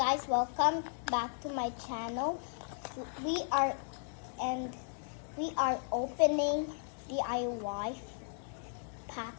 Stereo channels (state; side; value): silent; right; digital silence